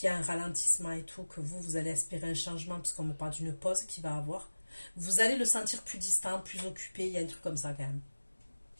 y a un ralentissement et tout, que vous allez espérer un changement, puisqu'on me parle d'une pause qu'il va avoir. Vous allez le sentir plus distant, plus occupé, il y a un truc comme ça quand même.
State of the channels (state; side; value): inverted; both; correlation -1.00